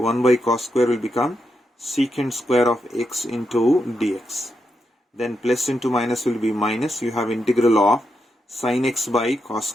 by cos square will become secant square of x into dx. Then plus into minus will be minus. You have integral of sin x by cos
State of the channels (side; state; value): both; normal; correlation 0.84